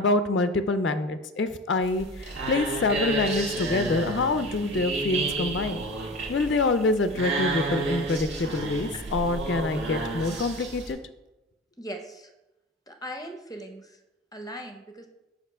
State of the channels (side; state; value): both; normal; correlation 0.32